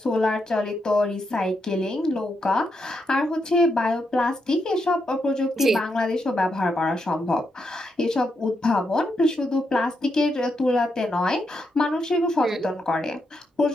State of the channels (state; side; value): normal; both; correlation 0.82